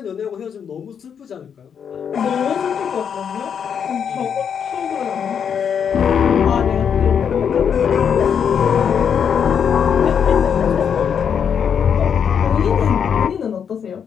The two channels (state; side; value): quieter; right; 7.6 dB